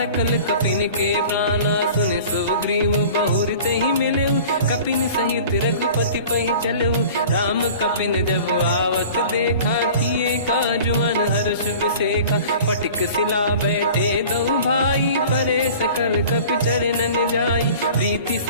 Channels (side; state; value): both; inverted; correlation -0.43